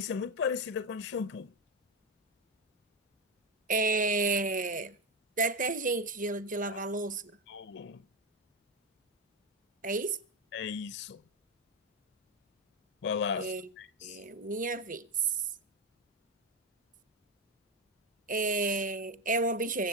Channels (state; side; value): normal; both; correlation 0.12